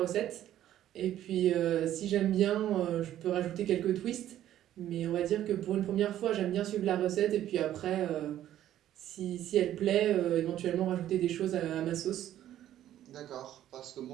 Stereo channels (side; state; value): left; quieter; 12.2 dB